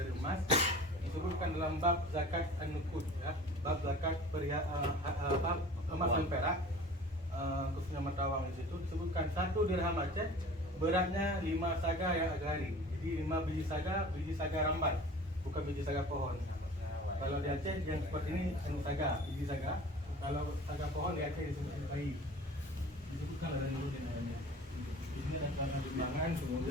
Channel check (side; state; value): both; normal; correlation 0.43